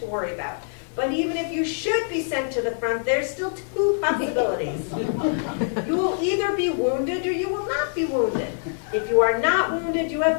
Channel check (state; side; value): silent; right; digital silence